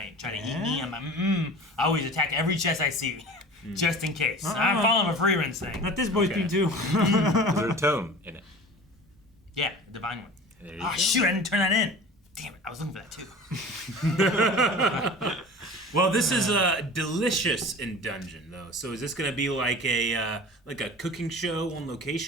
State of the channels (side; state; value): both; normal; correlation 0.39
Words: trying to eat me. I'm like, I always attack every chest I see, just in case. I'm following a free run thing. Let this boy Okay. be too. Was there a tome in it? Yeah, a divine one. There you Oh go. shoot, I didn't turn that in. Damn it, I was looking for that too. Well, this is Delicious in Dungeon, though. So is this going to be like a cooking show on